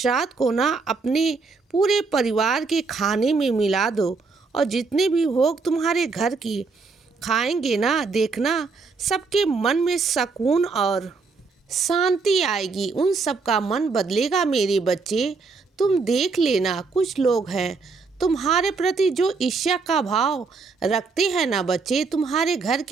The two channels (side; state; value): left; quieter; 4.4 dB